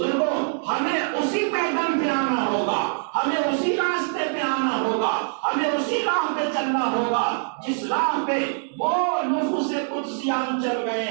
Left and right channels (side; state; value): left; silent; 63 dB below the other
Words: ہمیں اسی پیغام پہ آنا ہوگا، ہمیں اسی راستے پہ آنا ہوگا، ہمیں اسی راہ پہ چلنا ہوگا جس راہ پہ وہ نفوس قدسیان چل گئے